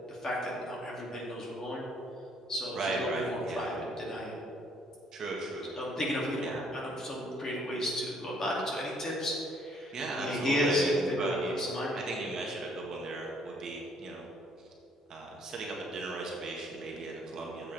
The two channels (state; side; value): normal; both; correlation 0.64